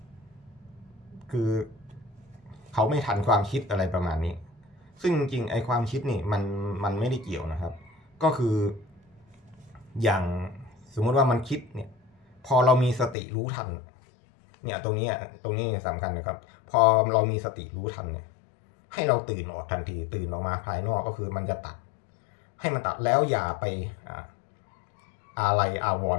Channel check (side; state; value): right; drops out; at 13.2 s